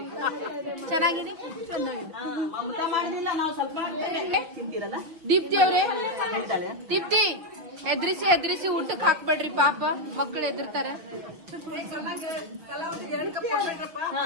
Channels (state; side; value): late; left; 5.9 ms